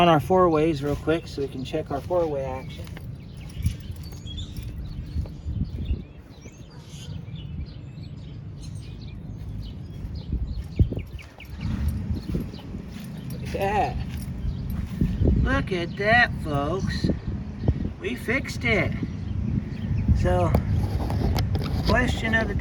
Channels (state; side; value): identical; both; correlation 1.00